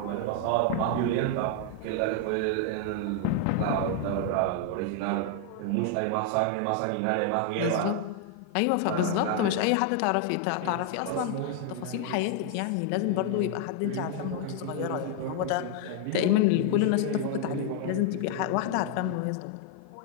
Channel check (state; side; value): different; both; correlation 0.00